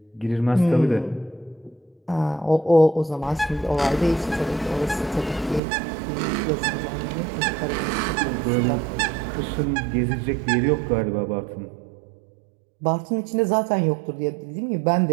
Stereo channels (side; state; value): left; drops out; at 5.6 s